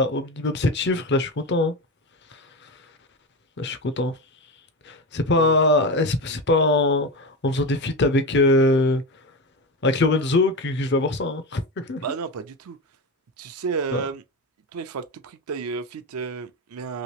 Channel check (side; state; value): both; normal; correlation 0.19